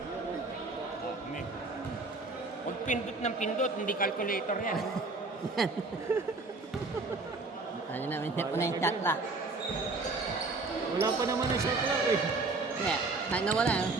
Huwag pindot ng pindot, hindi calculator yan. Ano namin, hindi po na yung chat lock. Wala pa naman ang shot clock, eh. Kaya, kahit nawala,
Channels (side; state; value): left; quieter; 3.6 dB